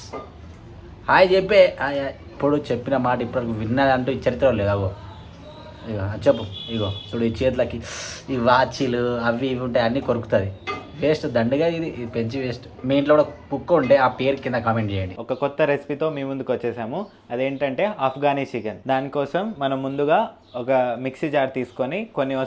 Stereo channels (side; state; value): both; identical; correlation 1.00